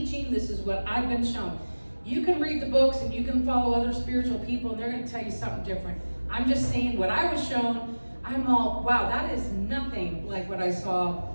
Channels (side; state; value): both; inverted; correlation -1.00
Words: this is what I've been shown. You can read the books and you can follow other spiritual people and they're going to tell you something different. I'm just saying what I was shown. I'm all, wow, that is nothing like what I saw